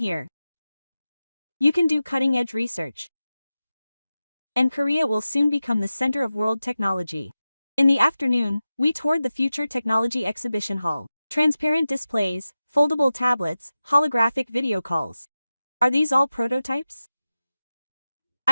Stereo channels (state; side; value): inverted; both; correlation -0.94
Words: You can do cutting-edge research. And Korea will soon become the center of world technology. In the afternoon, we toured the Future Technology Exhibition Hall. Transparent displays, foldable tablets, holographic video calls. Are these all prototypes?